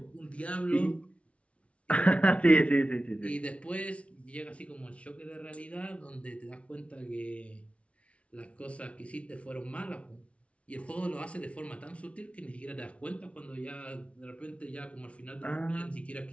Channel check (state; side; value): late; right; 0.062 ms